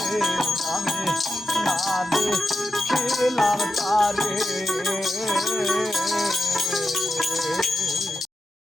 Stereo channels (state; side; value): normal; both; correlation 0.88